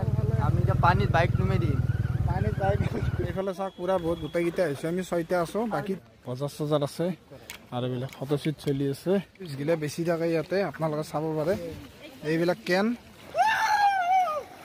আমি এতিয়া পানীত বাইক নুমাই দিম পানীত বাইক এইফালে চাওক পুৰা বহুত গোটেইকেইটা আহিছো আমি 6টা আছো বাকী বজাৰ চজাৰ আছে আৰু এইবিলাক ফটোশ্বুট চলি আছে গিলে বেছি থাকে ইয়াতে আপোনালোকে চাব পাৰে এইবিলাক কেন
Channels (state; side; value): identical; both; correlation 1.00